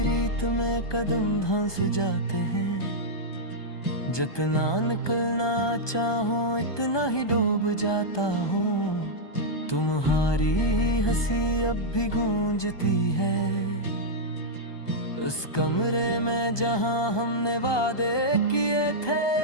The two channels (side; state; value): right; late; 1.2 ms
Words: रीत में कदम धंस जाते हैं, जितना निकलना चाहो इतना ही डूब जाता हूँ। तुम्हारी हंसी अब भी गूंजती है उस कमरे में जहां हमने वादे किए थे।